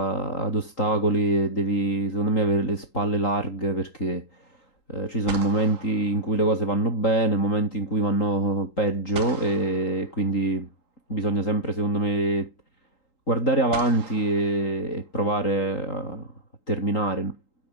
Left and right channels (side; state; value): right; late; 3.8 ms